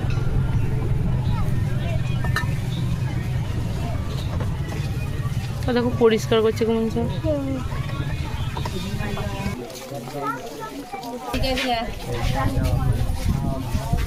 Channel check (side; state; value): both; identical; correlation 1.00